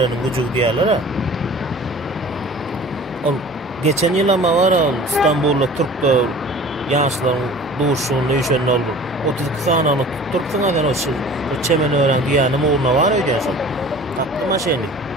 güjü diýerler ha. Ol geçen ýyl ama var İstanbulda Türkler ýaşlaryň duşuny ýeşen boldy. 32 sanyny tutturpsyň adan o çemen ören diýänim urna var öýdäşim. Tatlı maşyny.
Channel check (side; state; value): both; normal; correlation 0.44